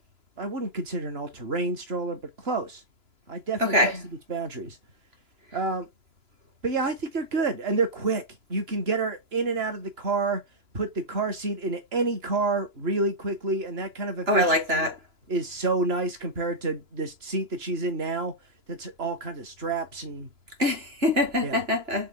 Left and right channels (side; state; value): left; late; 2.9 ms